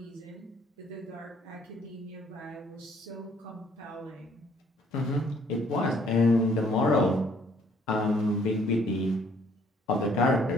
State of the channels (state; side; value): normal; both; correlation 0.62